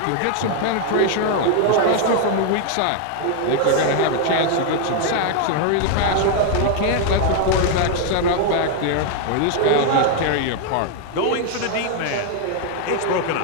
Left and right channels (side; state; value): both; different; correlation 0.00